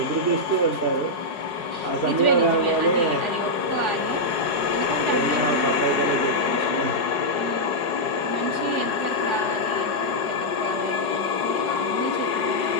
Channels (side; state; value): right; late; 4.8 ms